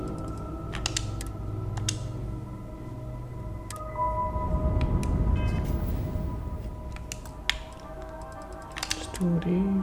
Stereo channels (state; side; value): identical; both; correlation 1.00